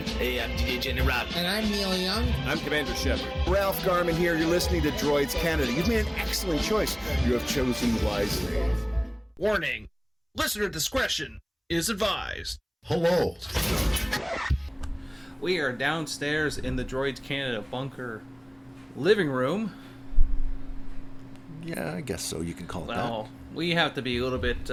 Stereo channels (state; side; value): identical; both; correlation 1.00